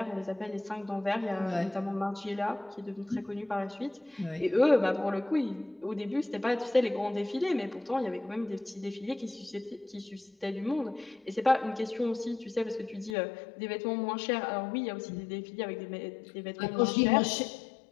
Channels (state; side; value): drops out; right; at 13.2 s